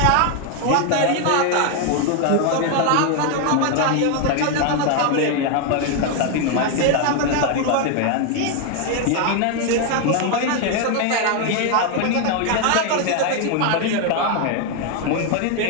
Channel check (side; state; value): both; different; correlation 0.01